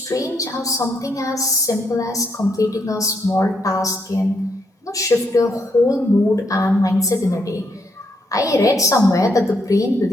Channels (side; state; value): both; normal; correlation 0.76